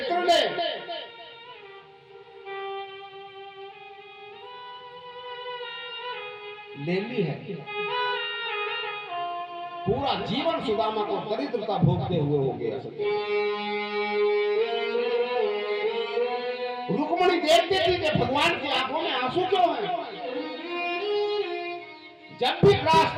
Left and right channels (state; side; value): identical; both; correlation 1.00